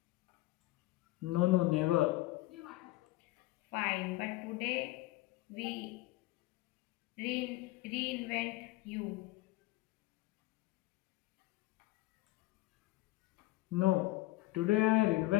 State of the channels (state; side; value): quieter; right; 18.9 dB